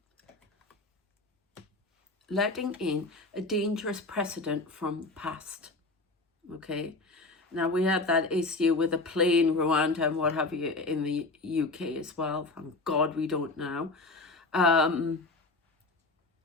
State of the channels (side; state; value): right; quieter; 3.2 dB